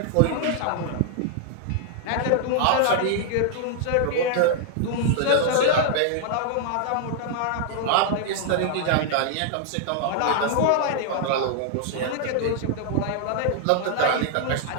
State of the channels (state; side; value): different; both; correlation 0.00